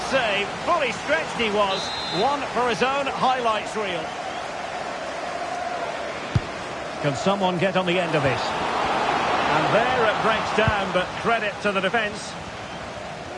save. Fully stretched he was. One for his own highlights reel. Can someone get on the end of this? And there it breaks down, but credit to the defence.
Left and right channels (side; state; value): both; identical; correlation 1.00